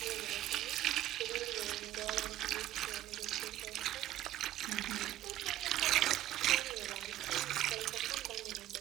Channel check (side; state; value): left; quieter; 13.8 dB